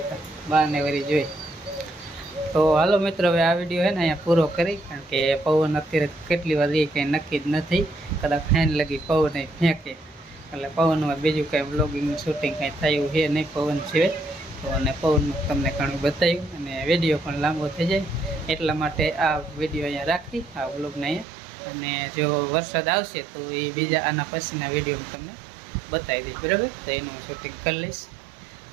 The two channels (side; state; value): left; drops out; at 21.2 s